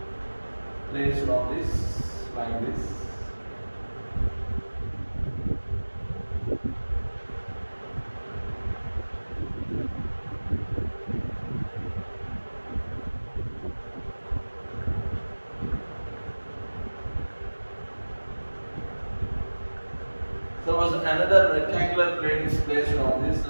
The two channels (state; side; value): inverted; both; correlation -1.00